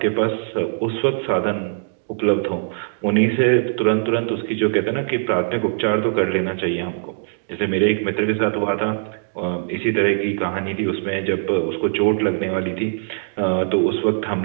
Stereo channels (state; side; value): silent; left; digital silence